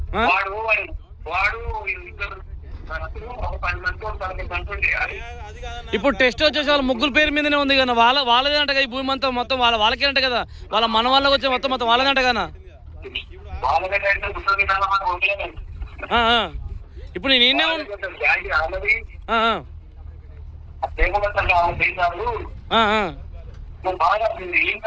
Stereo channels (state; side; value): identical; both; correlation 1.00